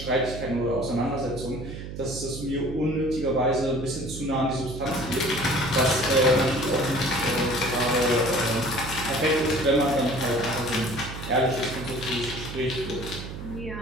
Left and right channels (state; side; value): noise; right; hum, 9 dB below the sound